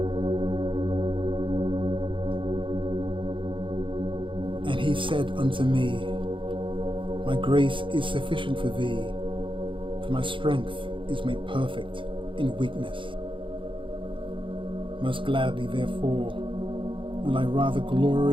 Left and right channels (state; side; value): late; left; 0.25 ms